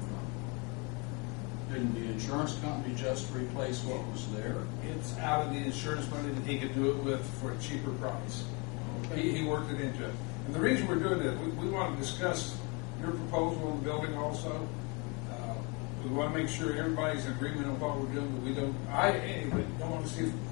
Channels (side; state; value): right; quieter; 30.6 dB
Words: from? Didn't the insurance company just replace what was there? It's out of the insurance money that he could do it with for a cheaper price. He worked it into it. And the reason we're doing this, we want to discuss your proposal on the building also. We want to make sure everybody's in agreement on what we're doing, but we don't, anyway, don't want to see if